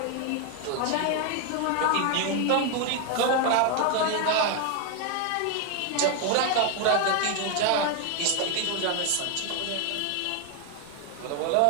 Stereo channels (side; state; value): both; different; correlation 0.01